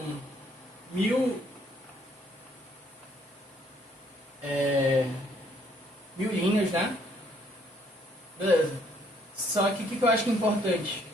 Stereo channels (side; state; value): both; normal; correlation 0.66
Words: mil, mil linhas, né? Beleza. Só que o que eu acho que é importante?